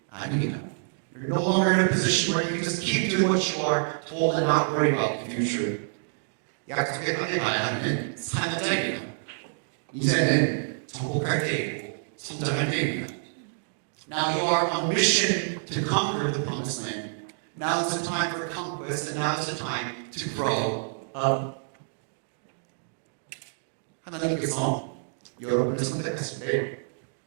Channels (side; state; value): left; silent; digital silence